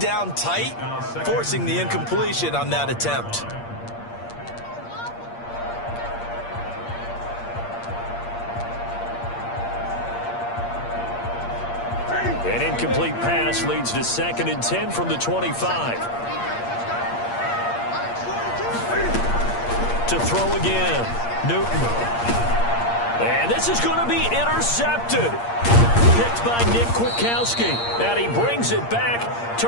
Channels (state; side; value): late; right; 8.6 ms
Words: down tight, forcing the incompletion on that attempt. An incomplete pass leads to 2nd and 10 from the 25. To throw again, Newton. And this is going to be intercepted. Picked by Nick Kwiatkowski. And he brings it back to